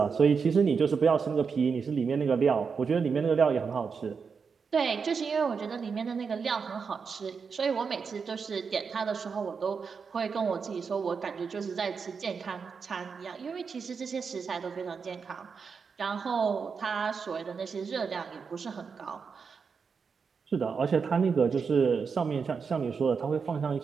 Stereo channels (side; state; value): left; quieter; 5.6 dB